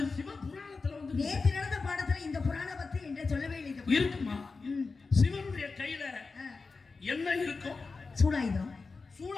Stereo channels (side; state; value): right; quieter; 4.3 dB